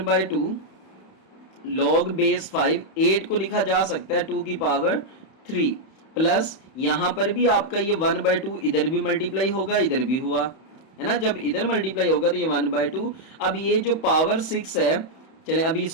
log बेस 5, 8 को लिखा जा सकता है 2 की पावर 3, प्लस यहाँ पर भी आपका ये 1/2 इधर भी मल्टीप्लाई होगा, इधर भी हुआ है ना, जब इधर मल्टीप्लाई होगा तो ये 1/2। अब ये जो पावर 6 है, चले अभी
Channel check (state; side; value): late; right; 31 ms